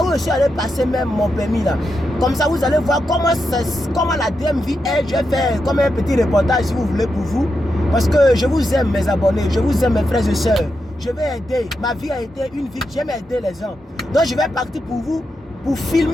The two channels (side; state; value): both; normal; correlation 0.86